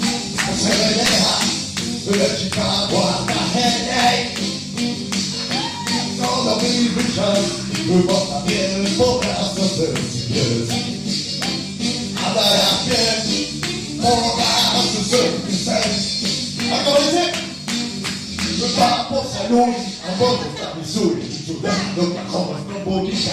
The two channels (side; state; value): both; identical; correlation 1.00